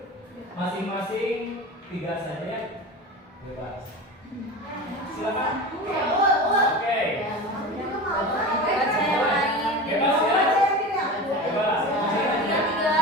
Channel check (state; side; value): normal; both; correlation 0.29